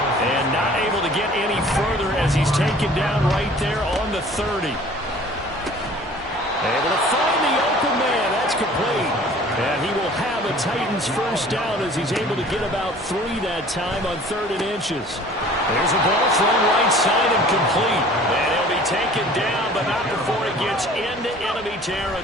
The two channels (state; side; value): normal; both; correlation 0.49